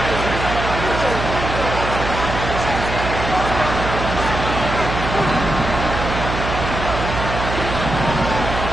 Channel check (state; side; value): noise; right; hum, 4 dB below the sound